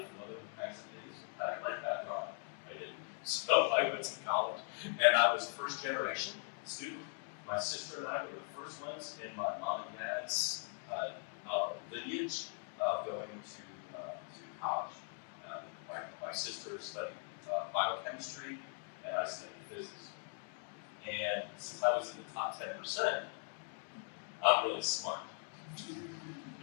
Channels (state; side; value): silent; right; 51 dB below the other